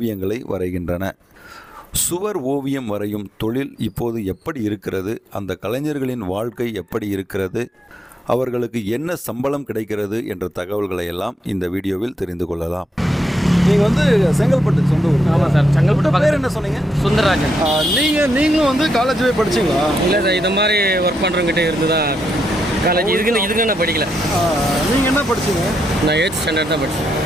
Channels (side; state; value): both; normal; correlation 0.81